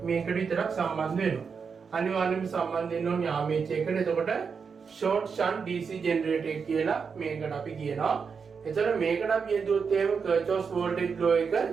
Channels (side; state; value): left; quieter; 5.8 dB